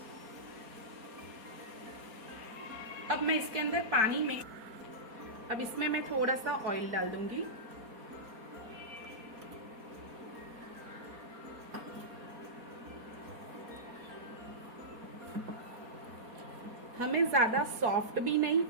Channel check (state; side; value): late; left; 4.2 ms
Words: अब मैं इसके अंदर पानी में अब इसमें मैं थोड़ा सा ऑयल डाल दूंगी। हमें ज्यादा सॉफ्ट भी नहीं